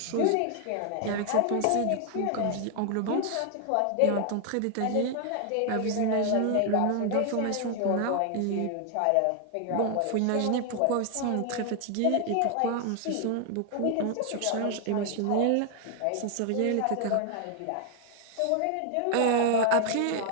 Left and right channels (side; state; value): both; different; correlation 0.00